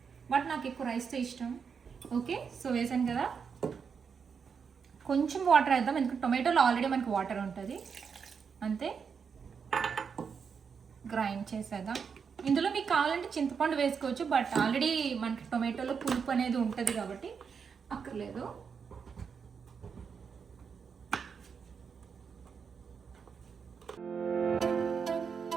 బట్ నాకు ఎక్కువ రైస్తో ఇష్టం. ఓకే, సో వేసాను కదా, కొంచెం వాటర్ వేద్దాం, ఎందుకంటే టొమాటోలో ఆల్రెడీ మనకి వాటర్ ఉంటుంది. అంతే, గ్రైండ్ చేసేద్దాం. ఇందులో మీకు కావాలంటే చింతపండు వేసుకోవచ్చు, బట్ ఆల్రెడీ మనకి టొమాటోలో పులుపు అనేది ఉంటుంది కాబట్టి అక్కర్లేదు.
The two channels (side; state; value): left; quieter; 6.3 dB